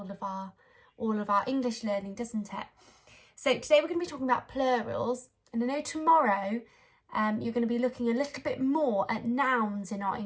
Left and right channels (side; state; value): both; identical; correlation 1.00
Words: of our English learning, doesn't it? So today we're going to be talking about plurals, and I know tomorrow you're going to be looking a little bit more at nouns in our